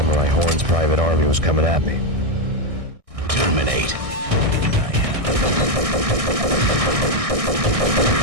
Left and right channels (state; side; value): late; left; 1.6 ms